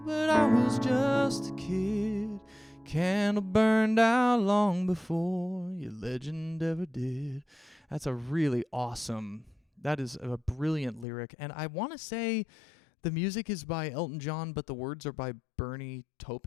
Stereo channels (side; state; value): right; drops out; at 11.1 s